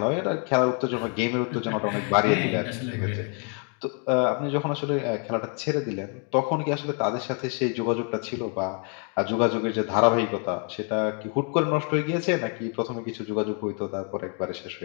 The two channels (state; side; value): quieter; right; 39.3 dB